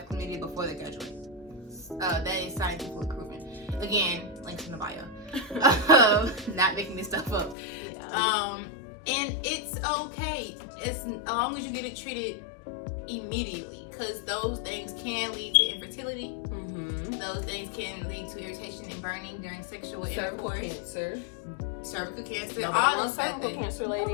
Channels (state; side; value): drops out; right; at 7.6 s